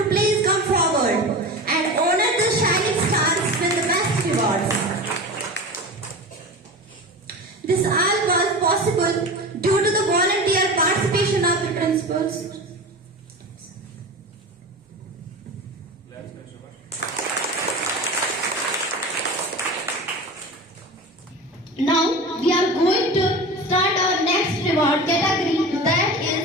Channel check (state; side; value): normal; both; correlation 0.30